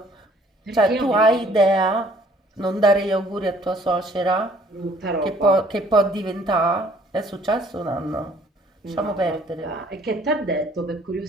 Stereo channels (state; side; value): normal; both; correlation 0.58